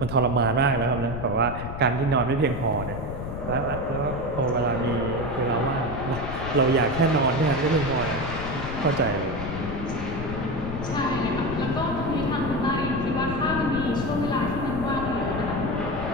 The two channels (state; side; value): noise; left; rumble, 7 dB below the sound